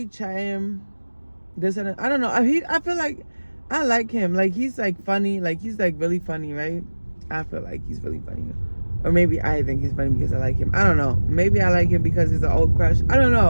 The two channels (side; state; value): both; inverted; correlation -1.00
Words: chatting. This and that. I don't know. I feel like I like him. Like, he's like funny. Like, he's like really funny, right? I feel like he's really funny. Or maybe I think he's funny because I like him. I don't know. Maybe I like him because he's an old crush. I don't